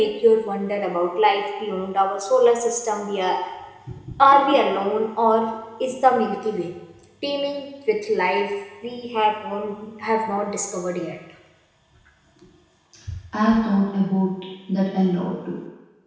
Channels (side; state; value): both; identical; correlation 1.00